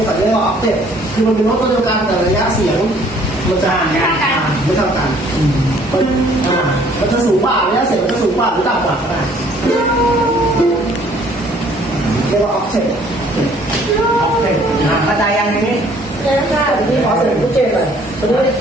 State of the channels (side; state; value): both; normal; correlation 0.59